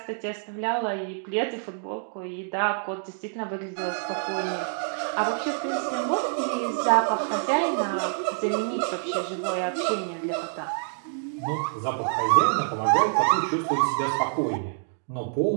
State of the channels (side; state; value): left; silent; digital silence